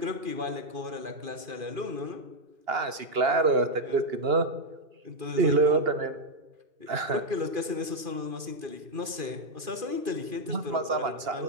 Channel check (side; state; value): left; late; 2.4 ms